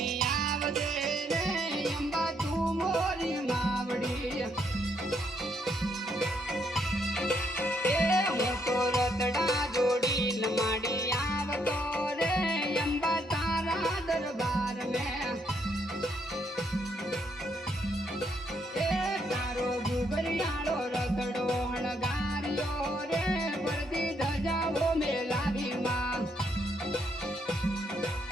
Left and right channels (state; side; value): normal; both; correlation 0.73